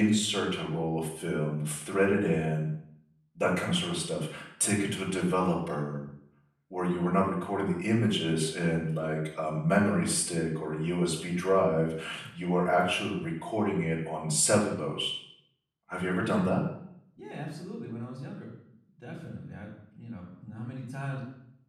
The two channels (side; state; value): both; identical; correlation 1.00